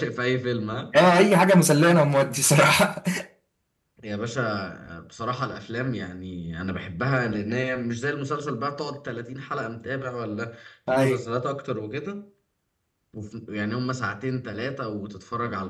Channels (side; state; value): both; identical; correlation 1.00